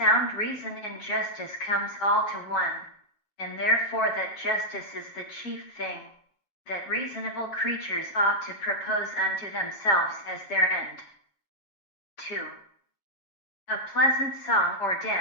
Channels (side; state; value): right; late; 7.2 ms